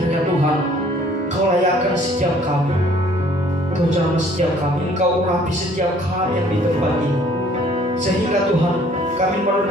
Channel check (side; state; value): both; normal; correlation 0.58